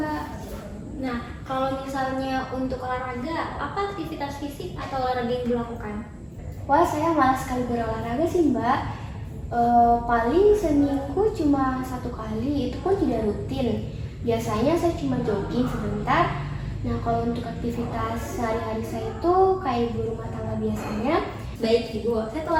Nah, kalau misalnya untuk olahraga, apa aktivitas fisik atau olahraga yang dilakukan? Wah, saya malas sekali berolahraga sih mbak. Paling seminggu cuma 1 kali, itu pun tidak rutin. Biasanya saya cuma jogging sebentar. Nah, kalau untuk aktivitas sehari-hari saya itu kayak ibu rumah tangga biasanya. Baik Ibu, saya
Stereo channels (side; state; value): both; identical; correlation 1.00